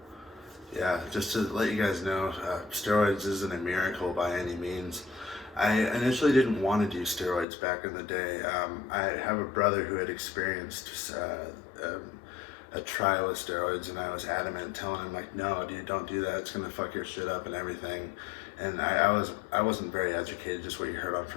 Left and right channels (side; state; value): right; drops out; at 7.5 s